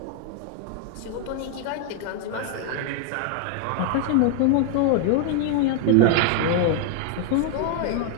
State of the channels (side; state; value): both; different; correlation 0.00